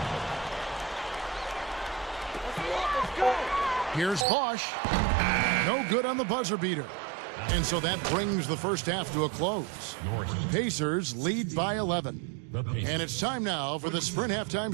Here's Bosch. No good on the buzzer beater. And so that brings the first half to a close. Pacers lead by 11. And it's time now for the Sprint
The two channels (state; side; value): drops out; left; at 4.2 s